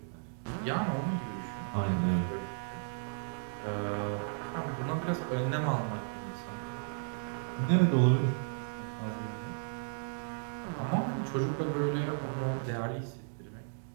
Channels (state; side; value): silent; left; digital silence